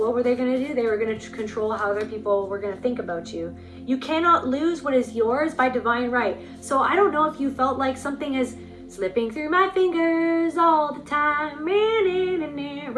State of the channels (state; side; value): identical; both; correlation 1.00